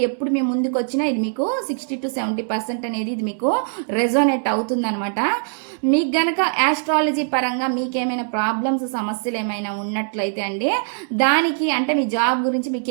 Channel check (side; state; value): left; silent; 64 dB below the other